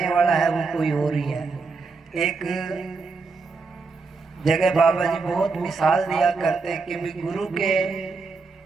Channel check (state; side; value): quieter; left; 4.4 dB